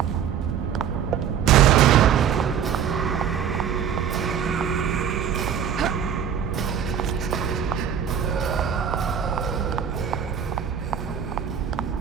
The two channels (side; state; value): left; quieter; 8.3 dB